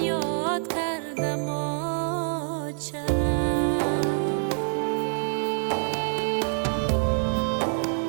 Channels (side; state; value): left; silent; 61 dB below the other